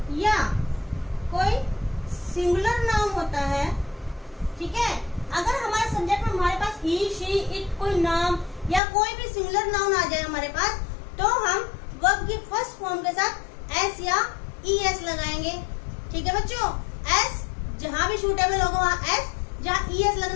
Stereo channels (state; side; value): drops out; right; at 8.8 s